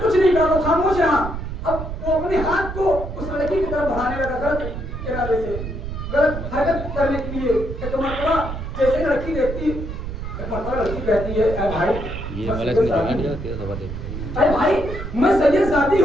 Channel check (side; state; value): right; noise; rumble, 7 dB below the sound